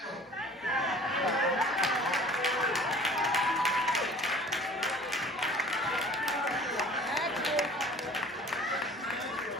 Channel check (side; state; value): both; normal; correlation 0.47